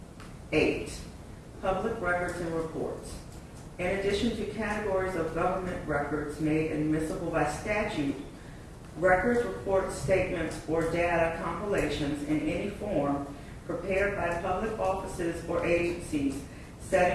8, public records and reports. In addition to categories of government records made admissible by statute, records, reports, statements, or data compilations in any form prepared by public offices or agencies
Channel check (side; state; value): both; identical; correlation 1.00